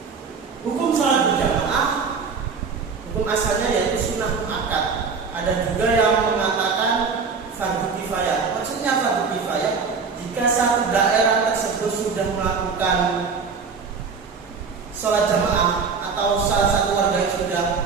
Hukum sholat berjamaah, hukum asalnya yaitu sunnah muakkad. Ada juga yang mengatakan fardu kifayah. Maksudnya fardu kifayah jika satu daerah tersebut sudah melakukan sholat jamaah atau salah satu warga yang sudah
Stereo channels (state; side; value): quieter; left; 5.2 dB